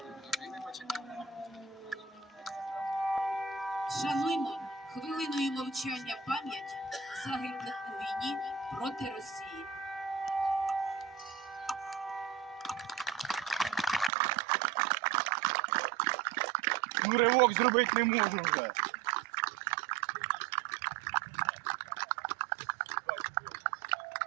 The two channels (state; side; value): drops out; left; at 14.1 s